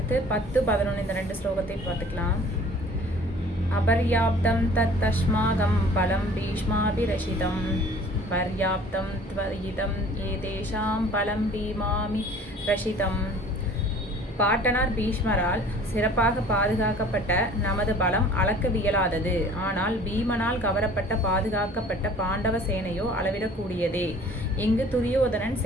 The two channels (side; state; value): both; normal; correlation 0.49